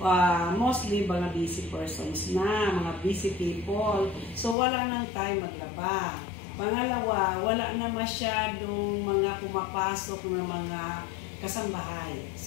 Mostly mga busy persons na, mga busy people. So wala nang time maglaba. Pangalawa, wala na masyadong mga pumapasok na mga kasambahay.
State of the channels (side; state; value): right; drops out; at 4.5 s